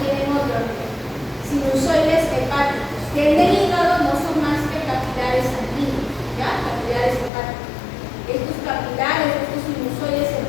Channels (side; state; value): right; drops out; at 7.3 s